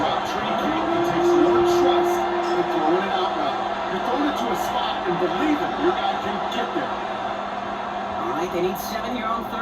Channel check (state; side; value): identical; both; correlation 1.00